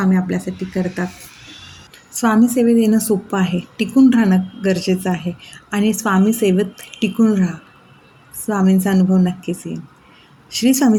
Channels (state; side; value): identical; both; correlation 1.00